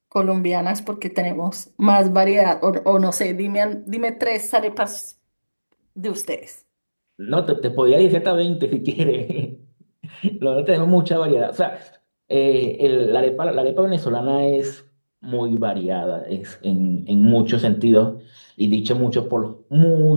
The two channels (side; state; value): both; inverted; correlation -1.00